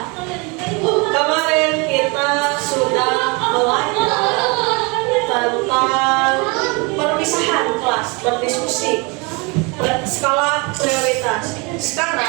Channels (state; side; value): quieter; left; 29.5 dB